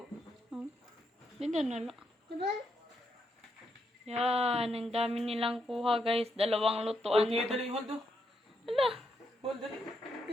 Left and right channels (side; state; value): both; normal; correlation 0.80